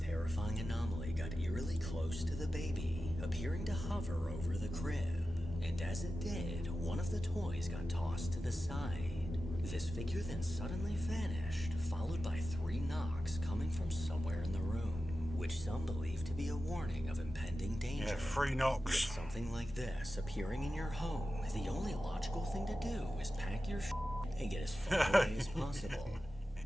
anomaly got eerily close to the baby, appearing to hover over the crib. And as it did, one of the toys got tossed to the side. This figure then suddenly vanished, followed by 3 knocks coming from somewhere in the room, which some believe to be a warning of impending danger. Yeah, 3 knocks. With something like this appearing in your home, the only logical thing to do is pack your shit and get as far away as possible.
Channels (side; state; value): both; normal; correlation 0.93